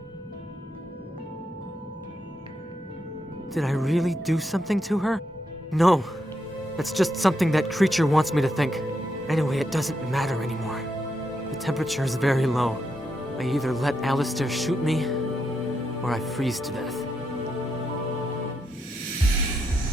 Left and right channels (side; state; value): both; normal; correlation 0.82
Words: Did I really do something to her? No. That's just something that creature wants me to think. Anyway, it doesn't matter anymore. The temperature is very low. I either let Alistair shoot me, or I freeze to death.